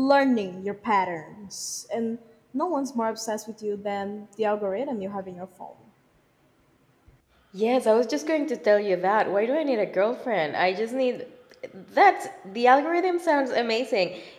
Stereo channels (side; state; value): both; identical; correlation 1.00